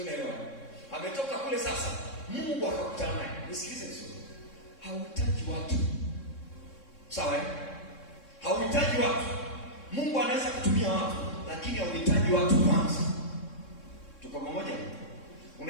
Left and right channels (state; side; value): late; right; 3.6 ms